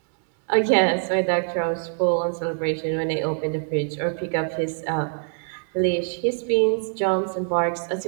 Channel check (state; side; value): silent; left; 62 dB below the other